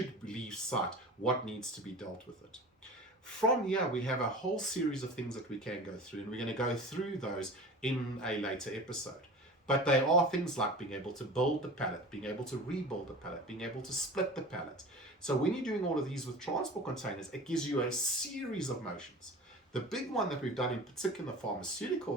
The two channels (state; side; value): normal; both; correlation 0.36